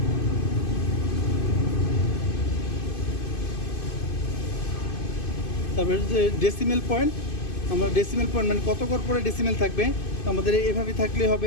তারপরে যে ডেসিমেল পয়েন্ট, আমরা ডেসিমেল পয়েন্ট মানে কত ঘর পরে ডেসিমেল থাকবে, তো আমাদের এভাবে থাকলে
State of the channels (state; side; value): late; right; 2.5 ms